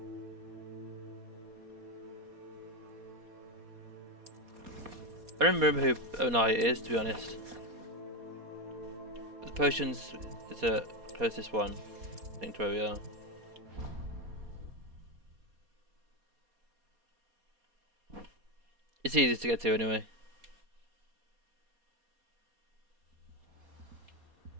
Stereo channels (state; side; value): late; left; 4.2 ms